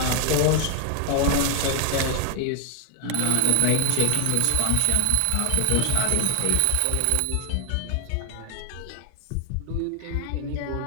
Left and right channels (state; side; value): different; both; correlation 0.00